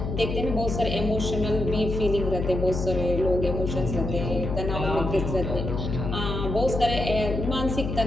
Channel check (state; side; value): noise; left; hum, 3 dB below the sound